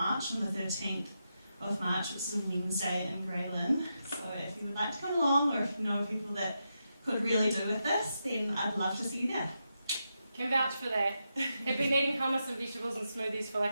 on the 13th of March, which is a Wednesday in Grey Lynn. So if you would like to come along, or if you know people that could really do with this, then I'd love to see you there. Can vouch for that. Have been eating hummus and vegetables and smoothies for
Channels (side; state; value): both; inverted; correlation -0.86